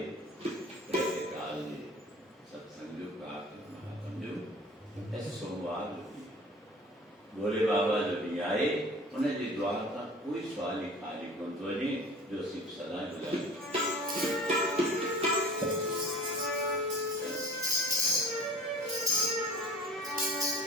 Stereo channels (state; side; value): normal; both; correlation 0.44